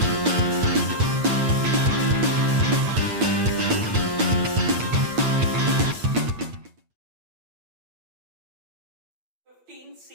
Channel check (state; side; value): late; left; 8.7 ms